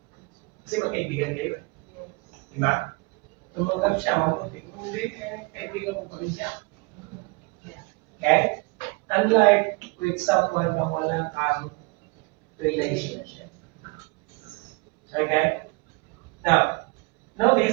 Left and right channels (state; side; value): quieter; left; 27.9 dB